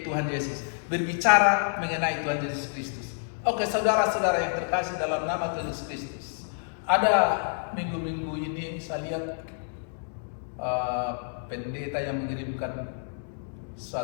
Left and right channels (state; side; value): silent; right; digital silence